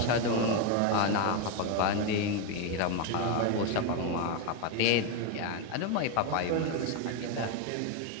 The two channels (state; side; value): different; both; correlation 0.02